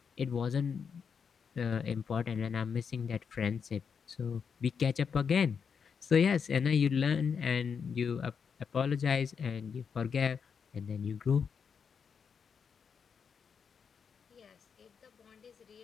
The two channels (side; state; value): right; quieter; 6.4 dB